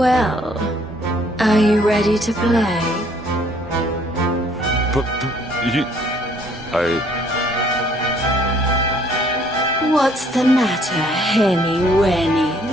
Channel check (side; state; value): both; normal; correlation 0.62